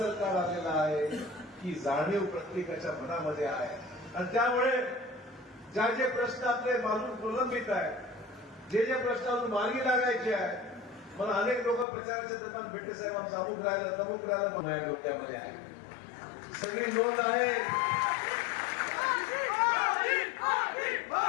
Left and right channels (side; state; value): right; drops out; at 11.9 s